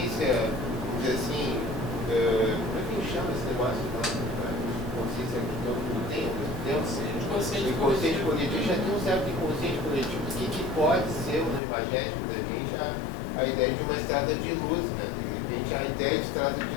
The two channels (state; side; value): drops out; right; at 11.6 s